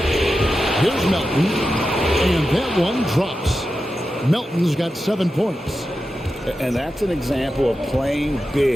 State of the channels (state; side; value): normal; both; correlation 0.91